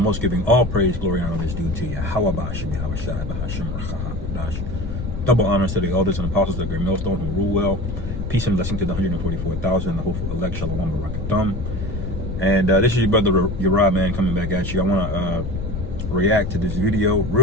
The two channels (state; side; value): noise; left; rumble, 5 dB below the sound